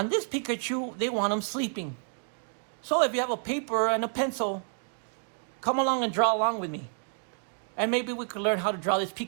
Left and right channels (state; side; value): silent; left; 58 dB below the other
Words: this Pikachu, they want him sleeping. So if you have a paper and a pencil, come along and draw along with me. And maybe we could learn how to draw this